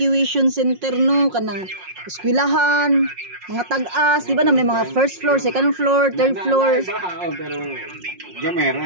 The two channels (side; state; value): left; late; 5.5 ms